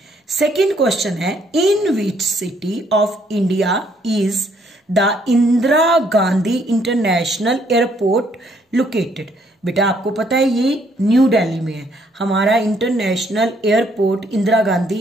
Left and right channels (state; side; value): normal; both; correlation 0.68